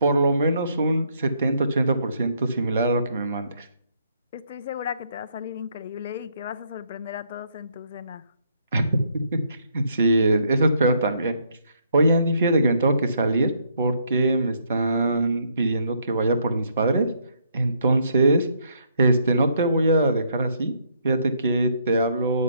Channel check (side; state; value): both; inverted; correlation -0.71